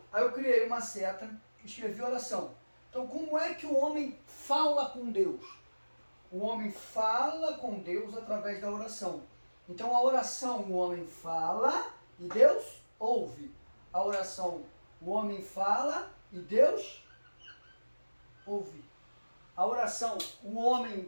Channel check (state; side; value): inverted; both; correlation -1.00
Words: Aí eu criei uma seta, escrevi oração. Então, como é que o homem fala com Deus? O homem fala com Deus através da oração. Então, a oração, o homem fala e Deus ouve. A oração, o homem fala e Deus ouve. A oração, o